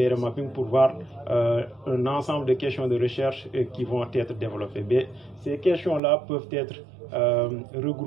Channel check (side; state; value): left; drops out; at 6.0 s